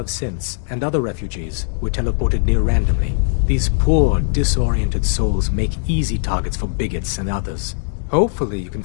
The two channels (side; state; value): right; silent; digital silence